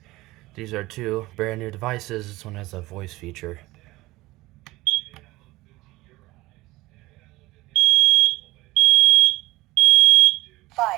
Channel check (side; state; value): left; quieter; 19.4 dB